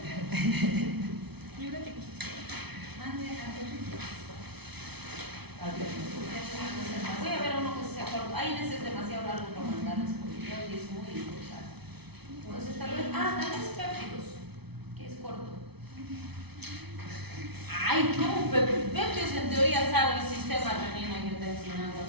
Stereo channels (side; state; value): left; late; 0.98 ms